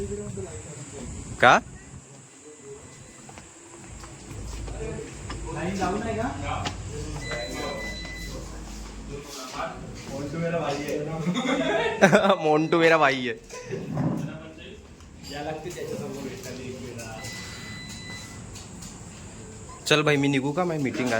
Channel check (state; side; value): identical; both; correlation 1.00